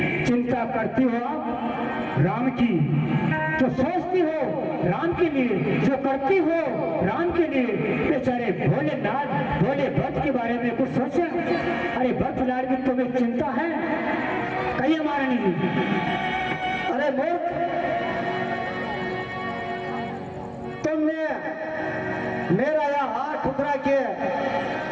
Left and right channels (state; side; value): identical; both; correlation 1.00